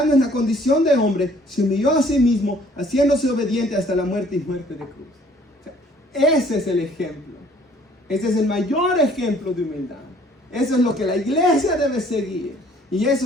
en la condición de hombre, se humilló a sí mismo, haciéndose obediente hasta la muerte y muerte de cruz. O sea, ese es el ejemplo. Ese es el mayor ejemplo de humildad. Eso es lo que la iglesia debe seguir. Y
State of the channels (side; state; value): both; normal; correlation 0.58